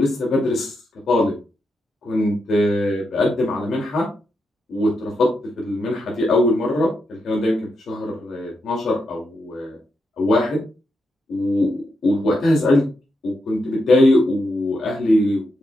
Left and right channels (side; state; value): both; normal; correlation 0.84